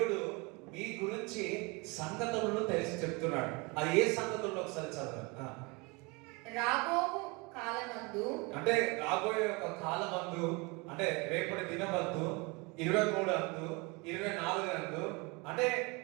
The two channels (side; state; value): left; quieter; 27.9 dB